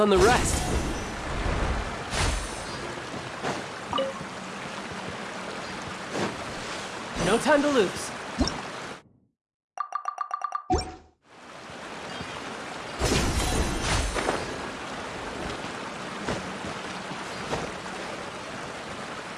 the rest. No time to lose.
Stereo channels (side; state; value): both; identical; correlation 1.00